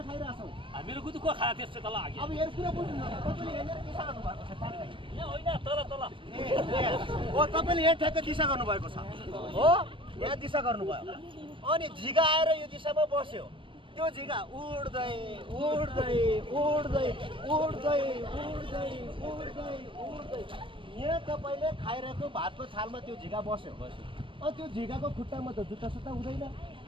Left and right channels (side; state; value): left; late; 0.25 ms